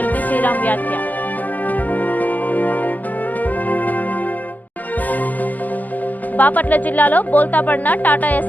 శ్రీరామ్ వ్యాఖ్య. బాపట్ల జిల్లాలో బోల్తాపడిన టాటా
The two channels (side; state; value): right; late; 0.082 ms